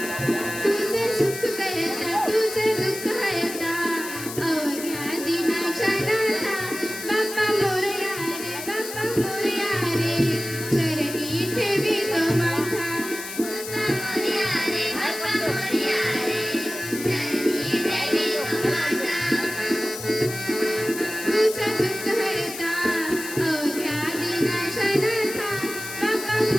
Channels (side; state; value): left; noise; hiss, 9 dB below the sound